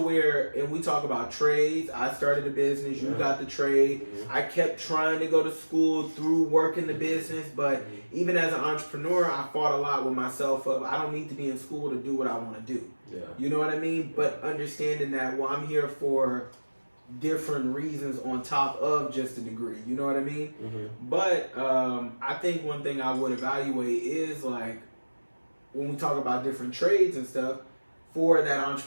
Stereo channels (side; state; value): both; inverted; correlation -1.00